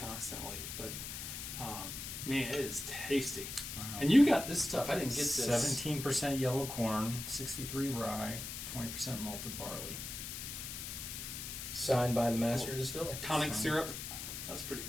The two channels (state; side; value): noise; left; hiss, 7 dB below the sound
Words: But man, it is tasty. Wow. And you got this stuff. I didn't get this. 17% yellow corn, 63 rye, 20% malted barley. Signed by the master distiller. Tonic syrup. That's pretty